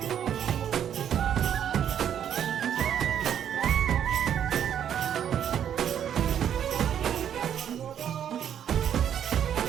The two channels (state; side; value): quieter; left; 9.4 dB